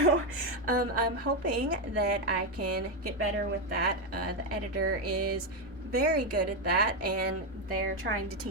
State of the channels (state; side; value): normal; both; correlation 0.07